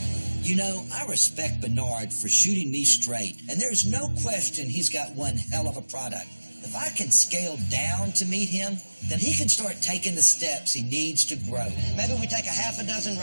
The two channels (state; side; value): inverted; both; correlation -1.00